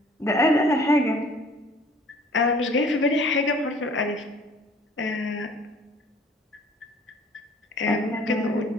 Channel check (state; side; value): normal; both; correlation 0.53